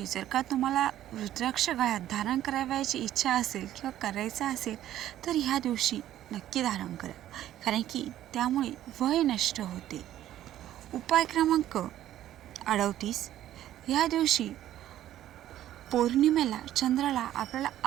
जर का तुम्हाला रुद्राक्ष गळ्यात धारण करावयाची इच्छा असेल किंवा करायचं असेल तर ह्या दिवशी नक्की धारण करा, कारण की त्यामुळे वय नष्ट होते. उपाय क्रमांक 38 या दिवशी पौर्णिमेला चंद्राला आपल्याला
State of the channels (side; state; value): left; quieter; 12.6 dB